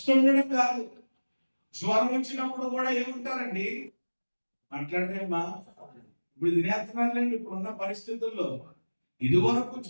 కాదు. జ్వరం వచ్చినప్పుడు కూడా ఏముంటారండి, మాట్లాడరేమా, ఇప్పుడు తినేస్తున్నారులేండి ఇప్పుడున్న పరిస్థితుల్లో. ఇదివరకు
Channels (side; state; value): both; inverted; correlation -1.00